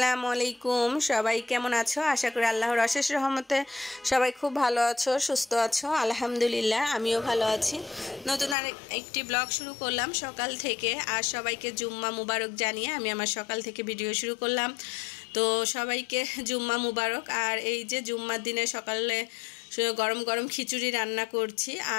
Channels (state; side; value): drops out; right; at 8.6 s